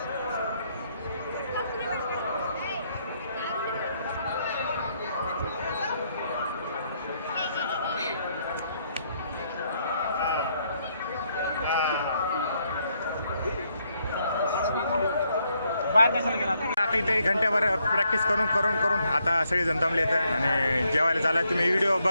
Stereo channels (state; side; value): inverted; both; correlation -0.75